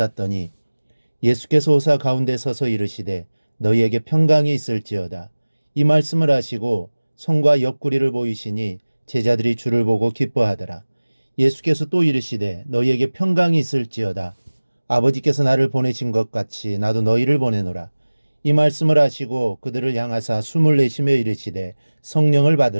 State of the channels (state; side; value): inverted; both; correlation -1.00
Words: 예수께서 오사 가운데 서서 이르시되 너희에게 평강이 있을지어다. 이 말씀을 하시고 손과 옆구리를 보이시니 제자들이 주를 보고 기뻐하더라. 예수께서 또 이르시되 너희에게 평강이 있을지어다. 아버지께서 나를 보내신 것 같이 나도 너희를 보내노라. 이 말씀을 하시고 그들을 향하사 숨을 내쉬며 이르시되 성령을